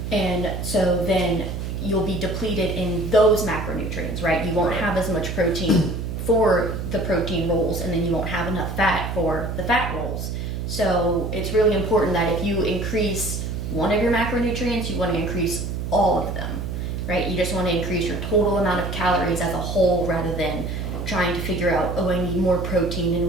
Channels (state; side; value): noise; right; hum, 4 dB below the sound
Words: And so then you'll be depleted in those macronutrients, right? You won't have as much protein for the protein rolls, and then you won't have enough fat for the fat rolls. So it's really important that if you increase one of your macronutrients, you want to increase all of them, right? You just want to increase your total amount of calories as a whole rather than trying to figure out, oh, I need more protein in